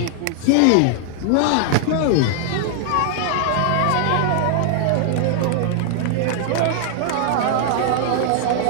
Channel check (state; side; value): different; both; correlation 0.00